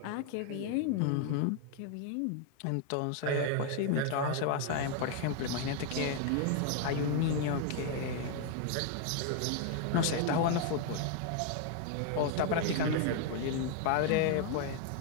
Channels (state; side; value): different; both; correlation 0.00